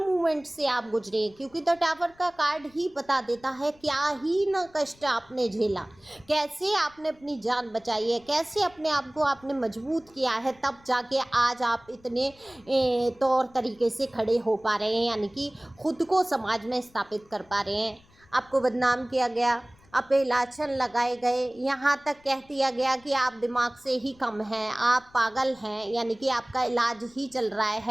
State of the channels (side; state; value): left; noise; rumble, 29 dB below the sound